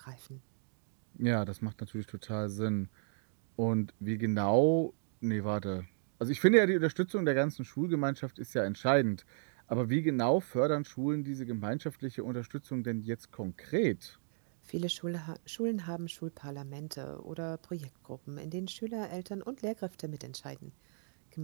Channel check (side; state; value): left; silent; digital silence